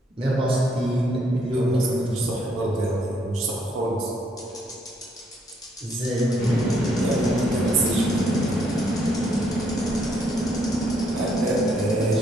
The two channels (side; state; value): both; normal; correlation 0.71